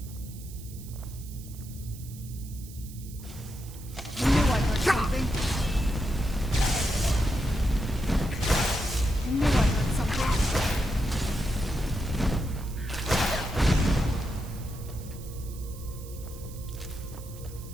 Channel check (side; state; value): right; noise; hiss, 18 dB below the sound